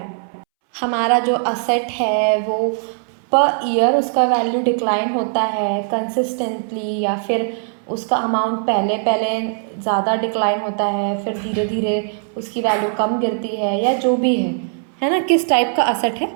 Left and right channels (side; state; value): left; silent; 66 dB below the other